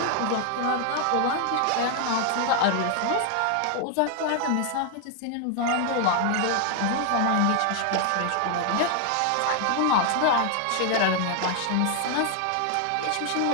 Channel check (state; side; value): different; both; correlation 0.00